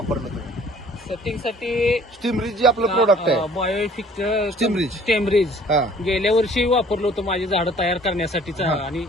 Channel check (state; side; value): normal; both; correlation 0.55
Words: तुम्ही सेटिंगसाठी स्टीमरीज जी आपलं प्रोडक्ट आहे, बायोफिक स्टीमरीज. स्टेमरीज हा गेल्या वर्षी वापरलं होतं माझी झाडं तयार करण्यासाठीच हा. आणि